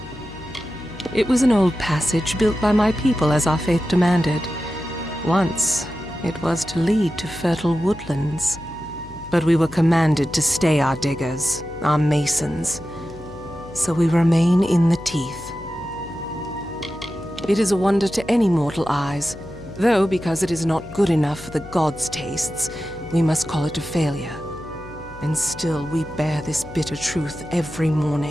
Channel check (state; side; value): noise; left; hum, 18 dB below the sound